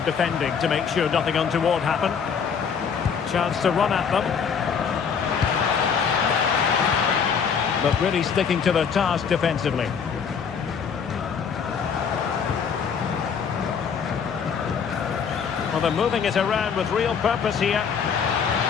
defending to make sure nothing untoward happened. Chance to run at them. But really sticking to their task defensively. Well, they're moving it around with real purpose here.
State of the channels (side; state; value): right; quieter; 6.6 dB